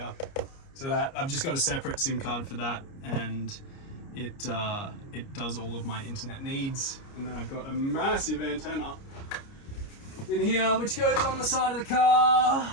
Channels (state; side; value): late; right; 29 ms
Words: So that I've just got a separate SIM card for that, and it does all of my internet needs. And then I've got a massive antenna in here which goes on the side of the